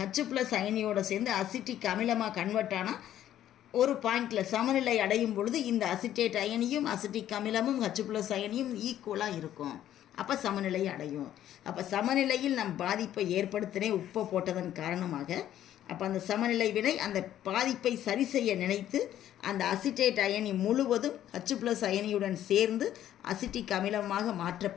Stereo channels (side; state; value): right; quieter; 11.8 dB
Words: H+ அயனியோட சேர்ந்து அசிட்டிக் அமிலமாக கன்வெர்ட் ஆனால் ஒரு பாயிண்டில் சமநிலை அடையும் பொழுது இந்த அசிட்டேட் அயனியும் அசிட்டிக் அமிலமும் H+ அயனியும் ஈக்குவலாக இருக்கும். அப்போ சமநிலை அடையும். அப்போ சமநிலையில் நம் பாதிப்பை ஏற்படுத்தினே உப்பை போட்டதன் காரணமாக அப்போ அந்த சமநிலை வினை அந்த பாதிப்பை சரி செய்ய நினைத்து அந்த அசிட்டேட் அயனி முழுவதும் H+ அயனியுடன் சேர்ந்து அசிட்டிக் அமிலமாக